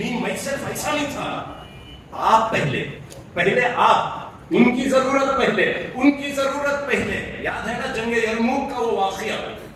میں صرف ایسا نہیں تھا. آپ پہلے آپ, ان کی ضرورت پہلے, ان کی ضرورت پہلے. یاد ہے نا جنگ یرموک کا وہ واقعہ,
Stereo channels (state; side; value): identical; both; correlation 1.00